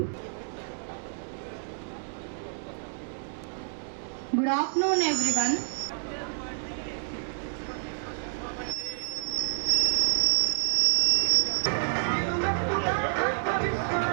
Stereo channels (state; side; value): silent; left; digital silence